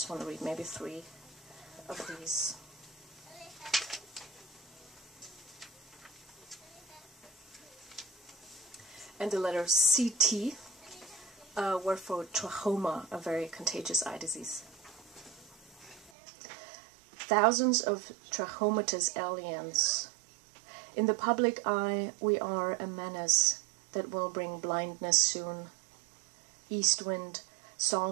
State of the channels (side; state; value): left; drops out; at 16.1 s